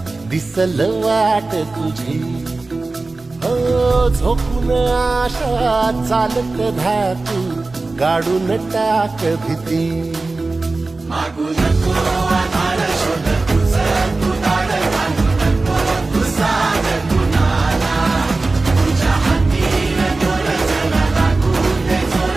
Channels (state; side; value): quieter; left; 3.5 dB